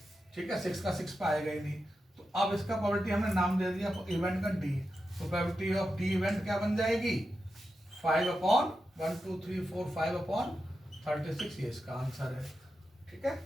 ठीक है। 6 का 6 पाएगा ही नहीं। तो अब इसका प्रोबेबिलिटी हमने नाम दे दिया इवेंट का डी, तो प्रोबेबिलिटी ऑफ डी इवेंट क्या बन जाएगी 5/1 2 3 4 5/36, ये इसका आंसर है। ठीक है,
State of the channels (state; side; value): normal; both; correlation 0.89